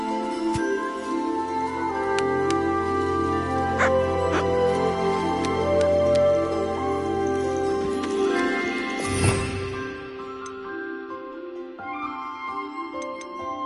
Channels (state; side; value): identical; both; correlation 1.00